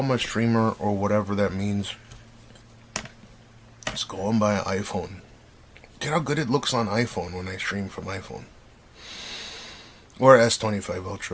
a streamer or whatever that means, just go and buy an iPhone. Get how good it looks on iPhone when I stream from iPhone. Or S25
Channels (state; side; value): identical; both; correlation 1.00